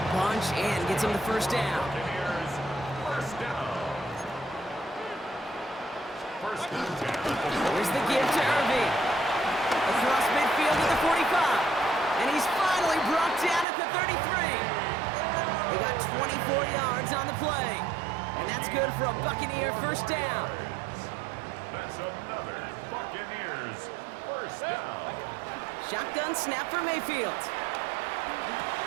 bunch and gets him the 1st down. Buccaneers, 1st down. 1st and 10 at the Here's the give to Irving. Across midfield at the 45. And he's finally brought down at the 33. They got 24 yards on the play. And that's good for a Buccaneer 1st down. That's another Buccaneers 1st down. Shotgun snap for Mayfield.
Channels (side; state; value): left; drops out; at 13.7 s